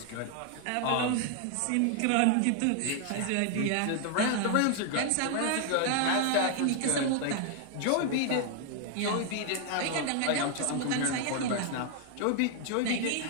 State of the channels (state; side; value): different; both; correlation 0.00